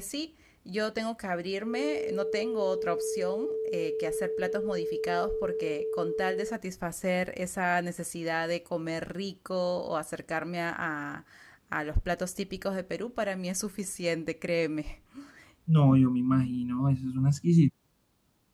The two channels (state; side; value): identical; both; correlation 1.00